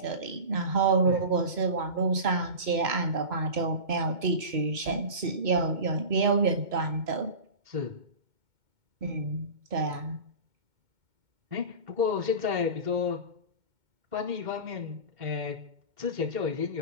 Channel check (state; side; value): late; left; 2.2 ms